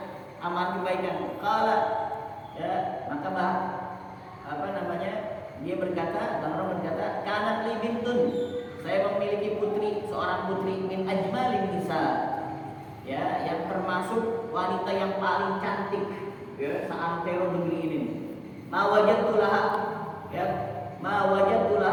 amal kebaikan. Qala, ya, maka dia berkata, Bahram berkata, kanat li bintun, saya memiliki putri, seorang putri min ajmalin nisa, ya, yang termasuk wanita yang paling cantik, ya, seantero negeri ini. Ma wajadtu laha, ya, ma wajadtu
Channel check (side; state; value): both; identical; correlation 1.00